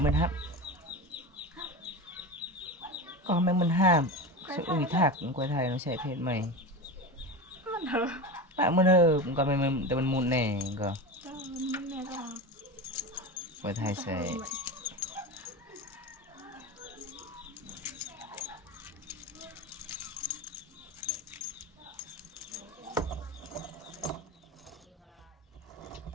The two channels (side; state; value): both; normal; correlation 0.25